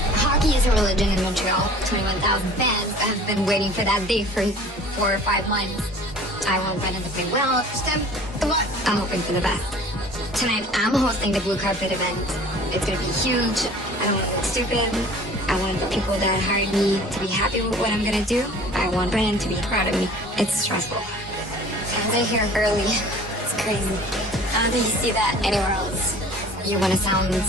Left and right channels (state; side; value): normal; both; correlation 0.47